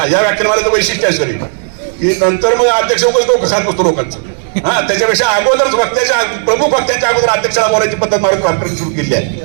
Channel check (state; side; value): silent; left; digital silence